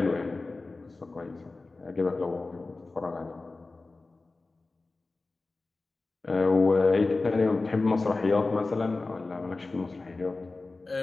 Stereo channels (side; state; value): right; quieter; 3.5 dB